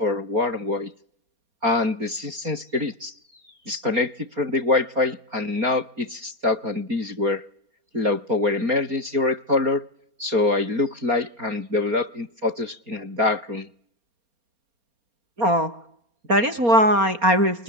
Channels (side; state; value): left; late; 4.3 ms